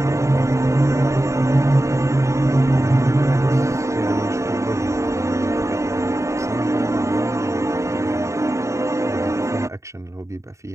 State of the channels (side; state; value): left; late; 0.14 ms